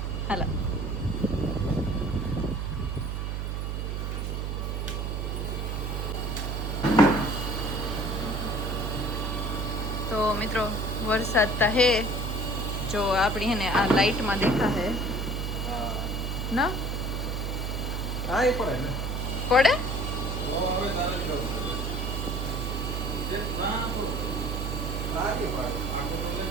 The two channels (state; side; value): noise; right; hum, 2 dB below the sound